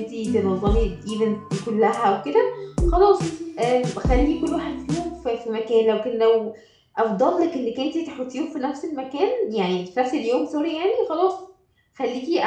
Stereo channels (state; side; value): identical; both; correlation 1.00